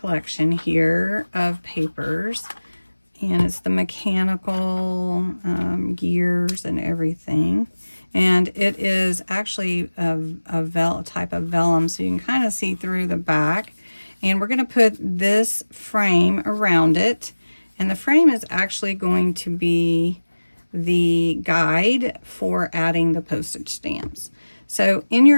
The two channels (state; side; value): inverted; both; correlation -1.00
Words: here of papers. And it's the mechanical gears and everything. And it is actually a type of vellum, so you can kind of see through the back. And we're going to put this frame around it. And the frame is actually going to be the guide for adding the postage stamps. So in